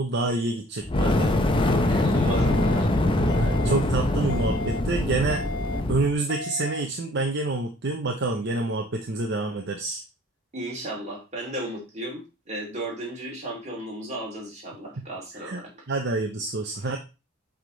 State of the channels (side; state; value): both; normal; correlation 0.55